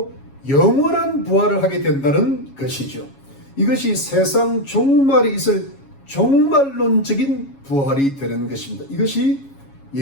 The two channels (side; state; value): right; late; 7.2 ms